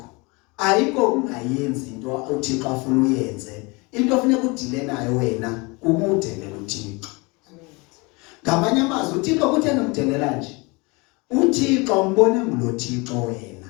ayikho ungayenzi into uThixo afuna uyenze. Into ofuneka udile nayo wena ukudelela uThixo. Ngamanye amazwi uThixo kutheni umdelela nje? uThixo umbone ngulo Thixo wena.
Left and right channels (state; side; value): quieter; right; 27.2 dB